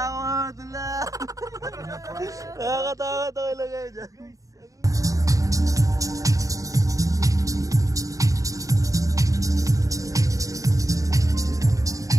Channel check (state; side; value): late; left; 0.16 ms